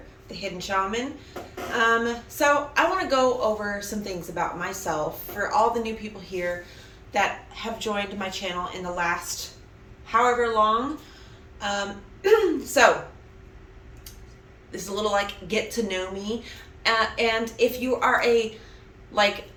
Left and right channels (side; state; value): both; identical; correlation 1.00